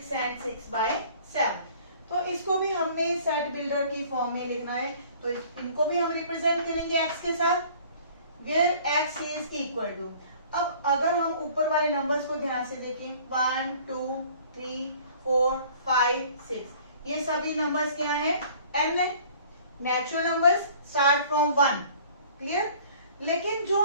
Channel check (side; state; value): both; inverted; correlation -0.51